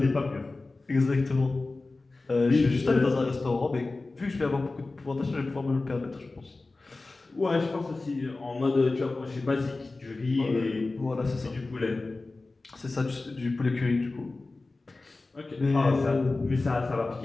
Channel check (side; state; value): right; quieter; 3.4 dB